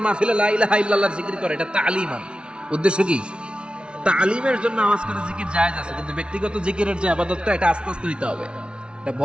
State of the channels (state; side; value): late; left; 0.057 ms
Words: মাহফিলে লা ইলাহা ইল্লাল্লাহর জিকির করে, এটা তালিমান। উদ্দেশ্য কি? তালিমের জন্য আওয়াজ করে জিকির জায়েজ আছে, কিন্তু ব্যক্তিগত জিকিরের যে ইবাদতটা এটা আস্তে আস্তে হইতে হবে, এটা